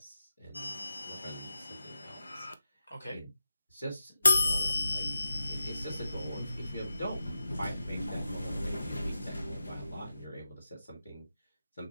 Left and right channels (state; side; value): inverted; both; correlation -0.89